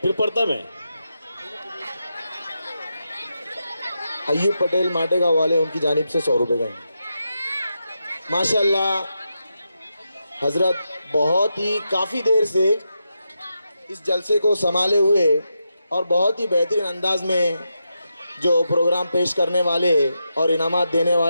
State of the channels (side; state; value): both; inverted; correlation -0.86